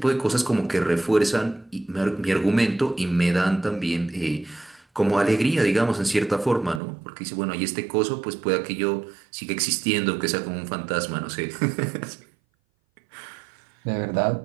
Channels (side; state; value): left; drops out; at 6.8 s